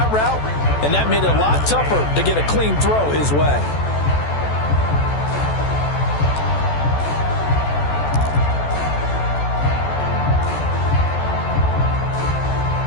route, and that made it a lot tougher to get a clean throw his way.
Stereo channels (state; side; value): late; right; 14 ms